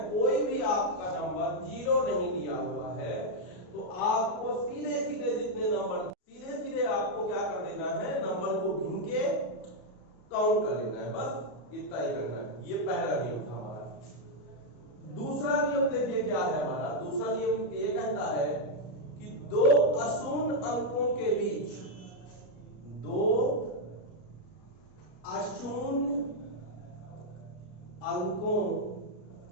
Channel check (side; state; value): right; late; 33 ms